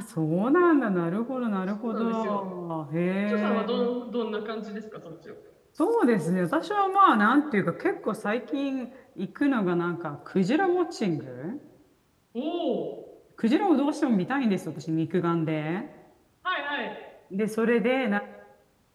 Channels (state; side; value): identical; both; correlation 1.00